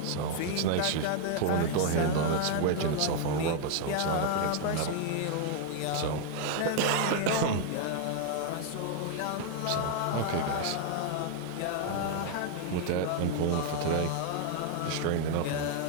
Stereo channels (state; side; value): different; both; correlation 0.00